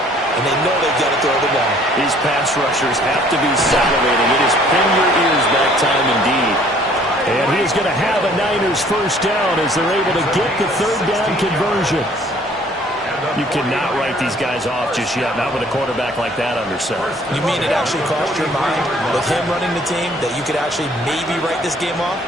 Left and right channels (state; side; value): normal; both; correlation 0.57